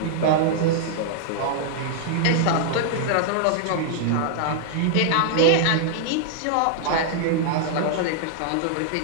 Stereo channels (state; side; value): different; both; correlation -0.01